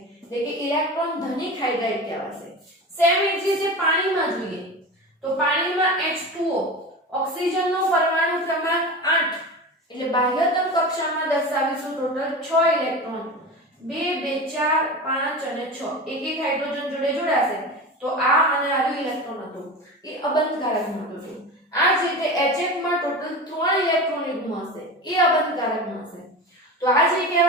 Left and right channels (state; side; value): normal; both; correlation 0.29